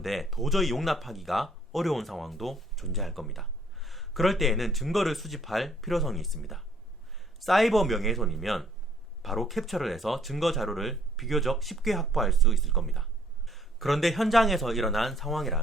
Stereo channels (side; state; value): both; normal; correlation 0.62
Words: 도저히 용납하기가 어려운 상황도 존재할 겁니다. 그럴 때에는 증거를 수집할 필요성이 있습니다. 사이버 명예훼손이면 바로 캡처를 해서 증거 자료를 비교적 쉽게 확보할 수 있을 겁니다. 그런데 현장에서 일어난